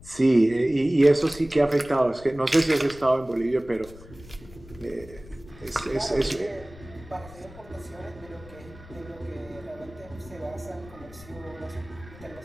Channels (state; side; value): noise; left; rumble, 19 dB below the sound